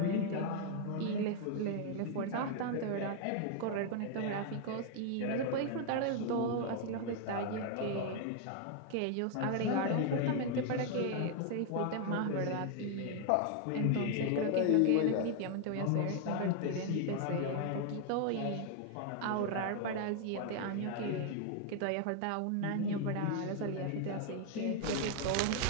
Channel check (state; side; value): different; both; correlation 0.00